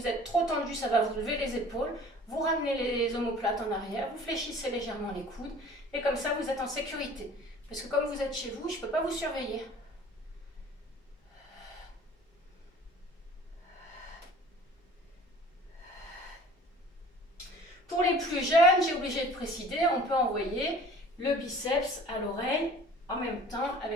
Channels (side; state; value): both; normal; correlation 0.47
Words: êtes trop tendu, ça va vous lever les épaules. Vous ramenez les omoplates en arrière. Vous fléchissez légèrement les coudes. Et comme ça, vous êtes en sécurité. Parce que comme vous êtes chez vous, je ne peux pas vous surveiller. Pour les plus jeunes, j'ai obligé de préciser, on peut envoyer le biceps à l'oreille en même temps